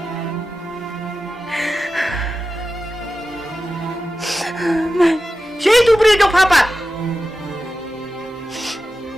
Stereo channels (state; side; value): normal; both; correlation 0.93